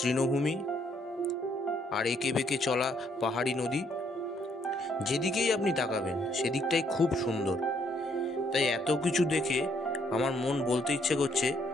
আর এঁকে বেঁকে চলা পাহাড়ি নদী, যেদিকেই আপনি তাকাবেন সেদিকটাই খুব সুন্দর। তাই এত কিছু দেখে আমার মন বলতে ইচ্ছে করছে,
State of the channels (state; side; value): normal; both; correlation 0.70